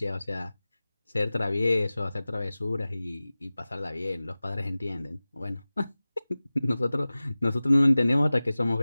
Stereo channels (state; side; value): inverted; both; correlation -0.98